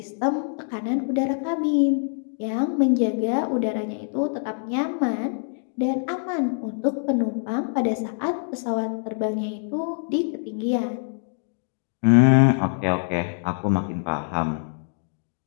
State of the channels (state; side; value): silent; right; digital silence